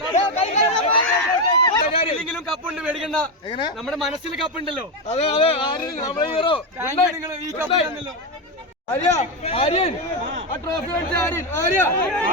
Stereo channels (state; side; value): normal; both; correlation 0.09